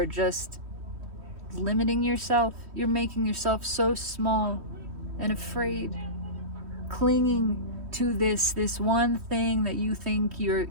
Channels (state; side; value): late; left; 3.1 ms